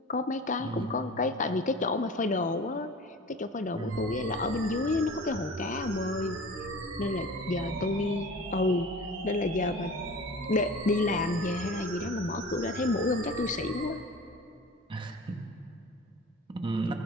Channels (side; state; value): both; normal; correlation 0.39